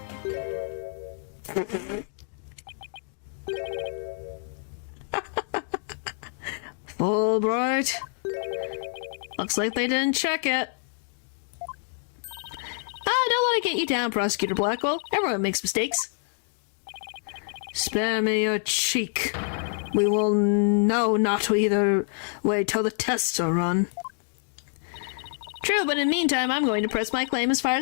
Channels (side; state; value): right; silent; digital silence